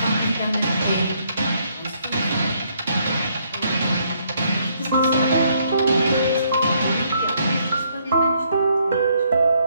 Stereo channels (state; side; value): inverted; both; correlation -0.71